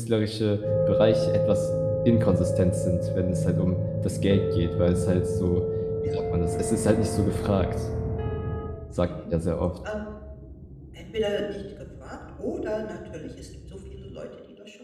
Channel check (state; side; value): identical; both; correlation 1.00